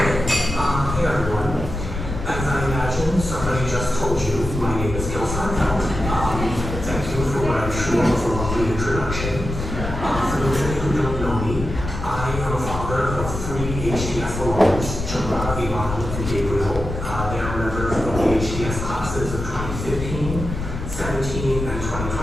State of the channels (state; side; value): noise; left; rumble, 6 dB below the sound